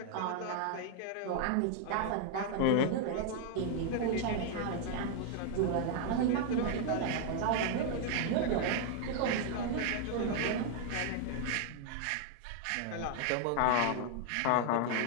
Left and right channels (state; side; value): different; both; correlation 0.00